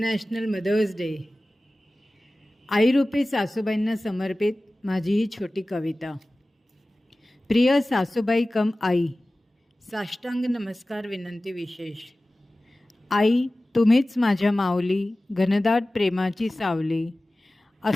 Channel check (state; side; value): normal; both; correlation 0.97